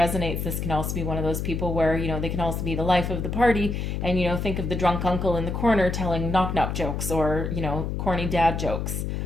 this can also be one of those people where, they can also be the life of the party and, think of the drunk uncle in the corner telling knock-knock jokes or, corny dad jokes.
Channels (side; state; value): left; noise; hum, 2 dB below the sound